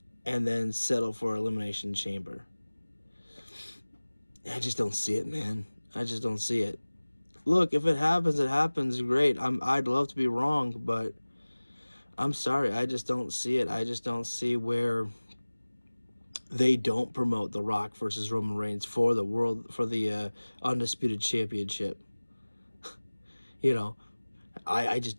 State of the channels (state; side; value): inverted; both; correlation -1.00